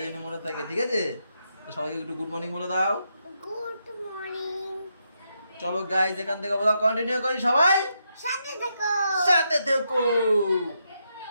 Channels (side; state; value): both; inverted; correlation -0.81